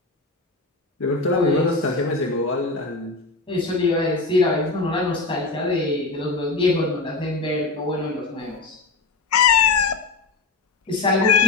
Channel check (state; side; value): quieter; right; 3.8 dB